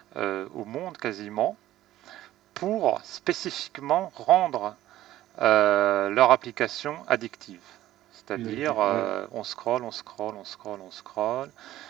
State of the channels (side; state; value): left; quieter; 14.2 dB